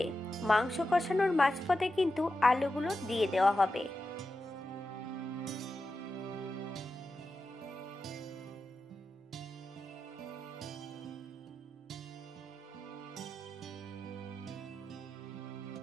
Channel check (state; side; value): normal; both; correlation 0.91